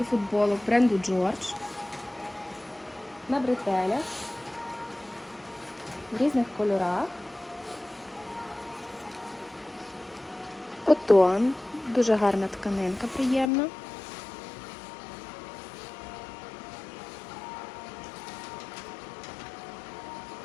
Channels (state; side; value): drops out; right; at 13.5 s